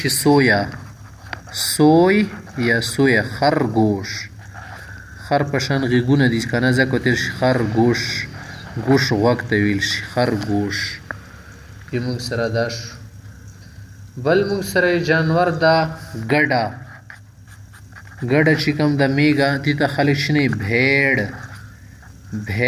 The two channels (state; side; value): identical; both; correlation 1.00